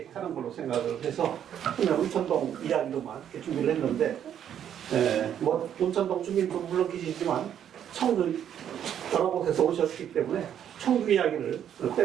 하는 걸로 생각을 해서 그냥 온천동 이야기로만 이렇게 준비를 했는데 뭐 온천동 주민도 물론 계시지만 청주 여러 곳에서 오셨기 때문에 청주 이야기를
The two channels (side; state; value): left; quieter; 9.6 dB